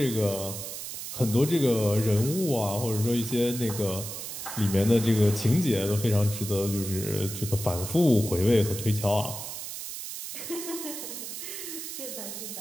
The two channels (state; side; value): noise; right; hiss, 8 dB below the sound